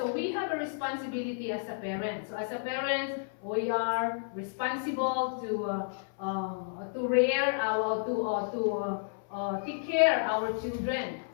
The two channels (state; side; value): silent; right; 57 dB below the other